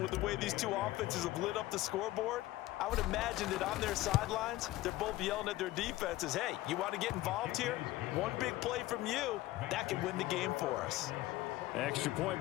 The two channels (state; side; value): quieter; right; 17.0 dB